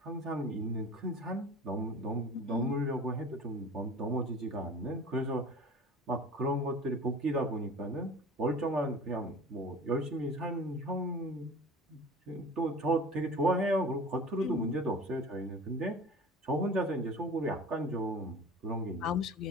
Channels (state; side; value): normal; both; correlation 0.40